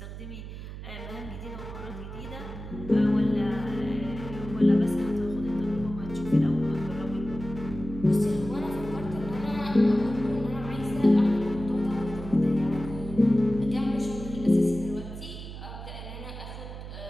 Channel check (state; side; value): noise; right; hum, 10 dB below the sound